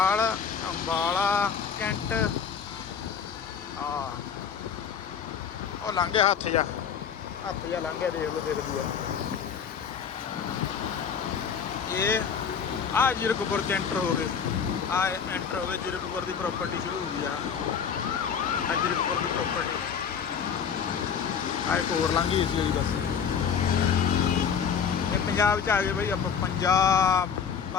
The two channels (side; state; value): right; quieter; 7.0 dB